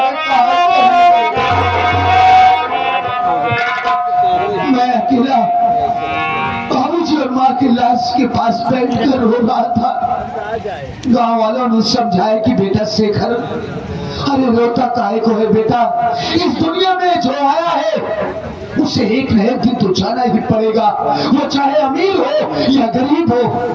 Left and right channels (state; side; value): identical; both; correlation 1.00